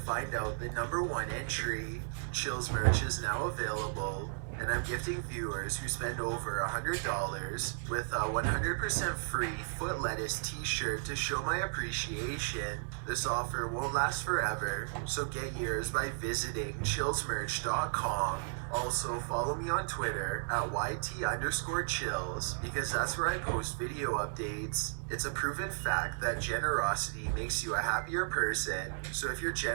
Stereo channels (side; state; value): left; silent; digital silence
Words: out the number 1 entry. Chills merch is now available, and I'm gifting viewers who spend over $100 with a 100% free Foot Lettuce t-shirt to show my appreciation. This offer won't last forever, so get yours by visiting chillsmerch.com. Also, follow me on Twitter at YT_chills because that's where I post video updates. It's a proven fact that generosity makes you a happier person. So if you're